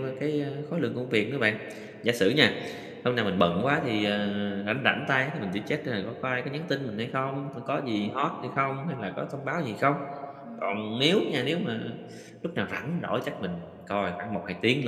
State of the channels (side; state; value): both; identical; correlation 1.00